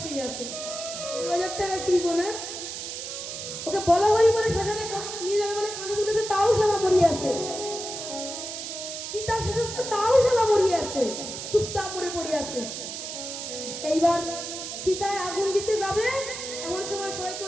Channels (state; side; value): noise; right; hiss, 7 dB below the sound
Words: শুয়ে আছে। 2000 টাকা কিনবো না, ওকে বলা হরি বলে শ্মশানে নিয়ে যাবে বলে কাঁধে তুলেছে, তাও শালা মরিয়ে আছে। সীতা শেষ তাও শালা মরিয়ে আছে, চুপচাপ মরে পড়ে আছে। এইবার সীতায় আগুন দিতে যাবে, এমন সময় সবাই